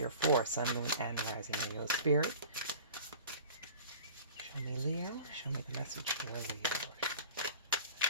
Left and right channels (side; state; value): both; inverted; correlation -0.42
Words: for sun, moon, and rising Leo spirit. Show me Leo. Show me the message for Leo.